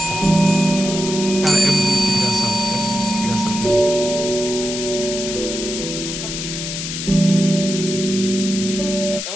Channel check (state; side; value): noise; left; hiss, 6 dB below the sound